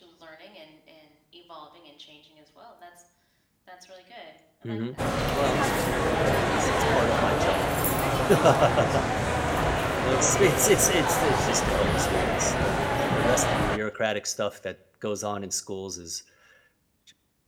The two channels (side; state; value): both; identical; correlation 1.00